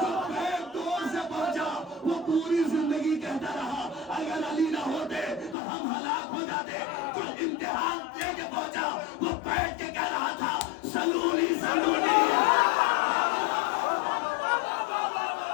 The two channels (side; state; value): right; drops out; at 5.6 s